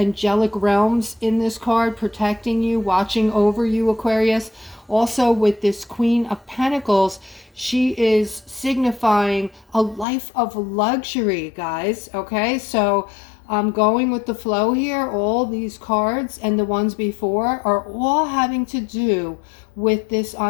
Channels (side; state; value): right; drops out; at 10.1 s